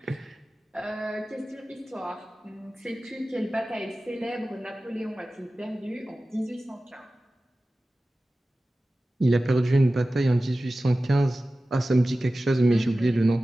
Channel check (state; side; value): normal; both; correlation 0.96